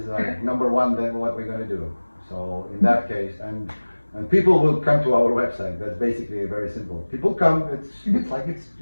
like number one. Then what we're going to do. So in that case, and people will come to our website. That's basically very simple. People come.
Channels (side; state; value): both; inverted; correlation -1.00